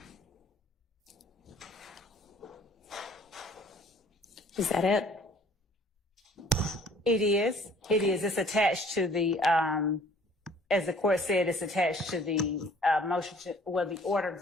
Is that it? It is. It is. It's attached to the, as the court said, it's attached to the motion to, well, the order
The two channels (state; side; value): normal; both; correlation 0.55